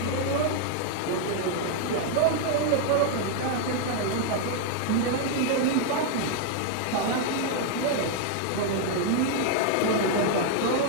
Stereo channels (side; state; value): both; different; correlation 0.00